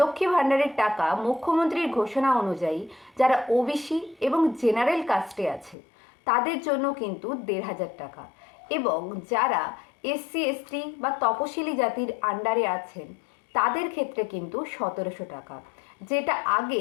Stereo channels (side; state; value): right; drops out; at 5.8 s